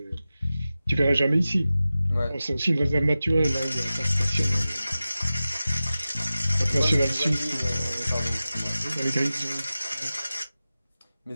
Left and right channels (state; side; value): inverted; both; correlation -0.95